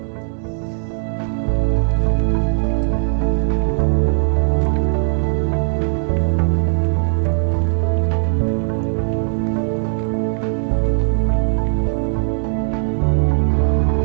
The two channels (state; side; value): silent; left; digital silence